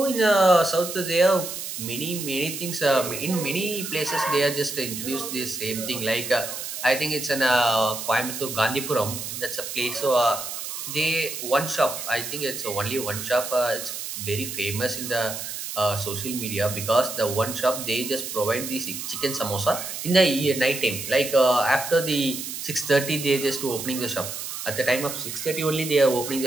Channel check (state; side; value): noise; right; hiss, 7 dB below the sound